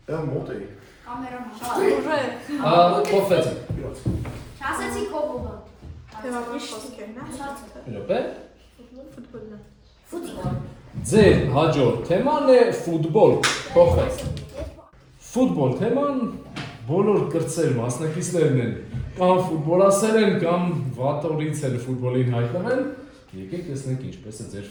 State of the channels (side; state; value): both; identical; correlation 1.00